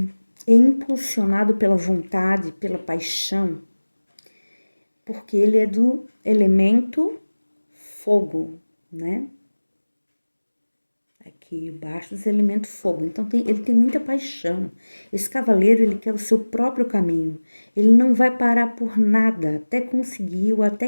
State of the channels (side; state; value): both; inverted; correlation -1.00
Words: é impulsionado pela vontade, pela paixão, porque ele é do elemento fogo, né? Aqui, Bastos é elemento fogo, então ele tem muita paixão. Esse cavaleiro, ele quer o seu próprio caminho. Ele não vai parar por nada até conseguir ou